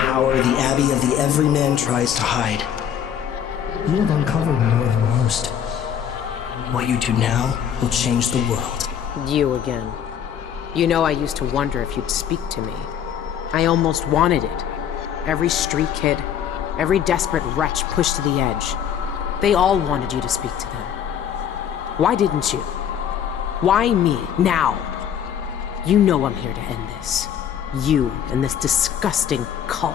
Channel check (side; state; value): right; quieter; 8.9 dB